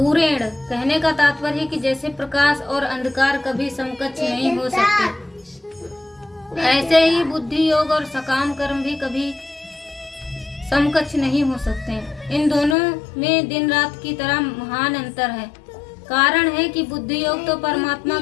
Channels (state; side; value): drops out; right; at 12.8 s